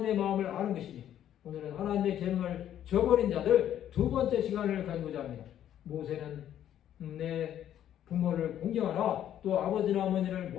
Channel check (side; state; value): right; quieter; 10.9 dB